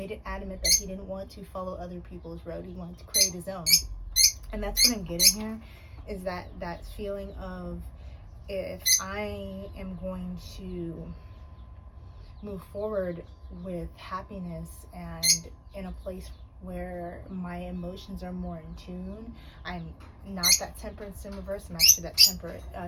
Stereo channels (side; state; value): both; identical; correlation 1.00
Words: it adamant that he didn't want to follow other people's road. He wanted to create his own. And that's what I'm getting here, is that feeling of, if I am going to move forward with happiness and in a place where my emotions are more in tune, I'm not that temperance in reverse, I'm actually that